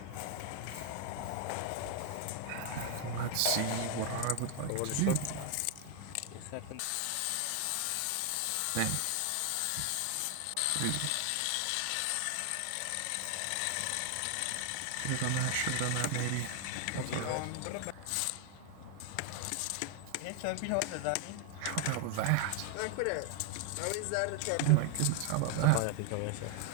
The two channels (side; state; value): both; different; correlation 0.00